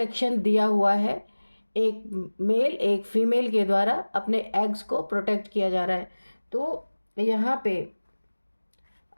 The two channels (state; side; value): inverted; both; correlation -1.00